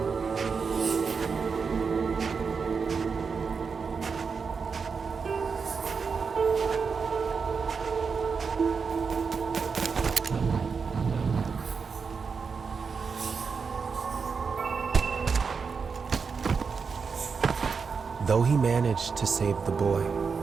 Though he managed to save the boy,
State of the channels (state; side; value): quieter; left; 5.4 dB